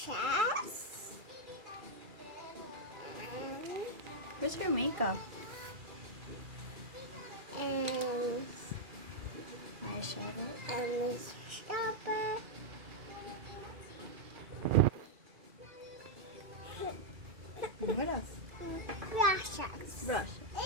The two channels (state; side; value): late; left; 2.4 ms